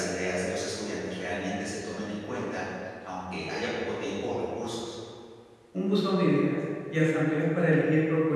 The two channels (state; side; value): identical; both; correlation 1.00